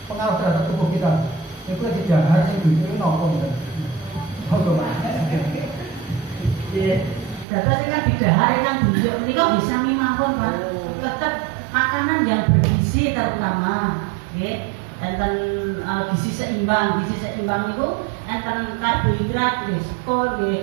pengaruh terhadap tubuh kita. Itu di dahar yang dulu nopo betul. Data sing di dahar yang dulu ini kok bisa mawon Pak. Tetap makanan yang bergizi terutama, nggih. Enten gizi seimbang itu enten karbohidrat, nggih, skor,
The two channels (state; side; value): drops out; left; at 7.5 s